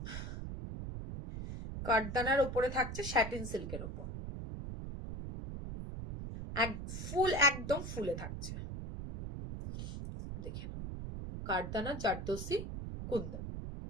কাঠদানার উপরে থাকছে স্যাটিন সিল্কের উপর ফুল একদম ফুলে থাকছে দেখে নাও কাঠদানা জারদোসি কুন্দন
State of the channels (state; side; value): noise; right; rumble, 6 dB below the sound